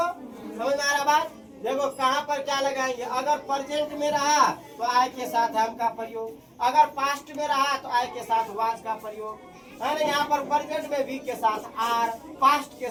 समझ में आ रहा बात? देखो कहाँ पर क्या लगाएंगे। अगर प्रेजेंट में रहा तो आई के साथ एम का प्रयोग, अगर पास्ट में रहा तो आई के साथ वाज का प्रयोग, है ना। यहाँ पर प्रेजेंट में वी के साथ आर, पास्ट के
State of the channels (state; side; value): identical; both; correlation 1.00